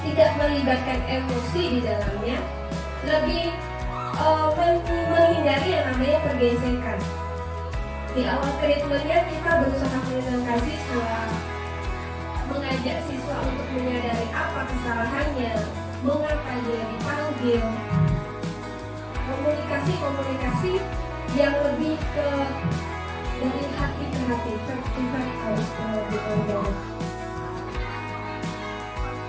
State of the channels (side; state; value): both; identical; correlation 1.00